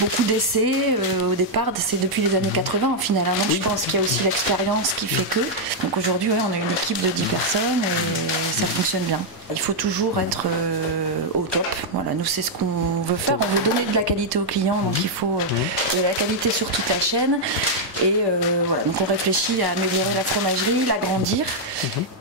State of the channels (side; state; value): both; normal; correlation -0.03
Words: d'essais au départ, c'est depuis les années 80 au final. Donc je pense qu'il y a aussi l'expérience qui fait que. Donc aujourd'hui, on a une équipe de 10 personnes et ça fonctionne bien. Il faut toujours être au top. Voilà, nous c'est ce qu'on veut faire. On veut donner de la qualité aux clients, donc il faut de la qualité sur toute la chaîne. Et voilà, donc on réfléchit à améliorer la fromagerie, l'agrandir,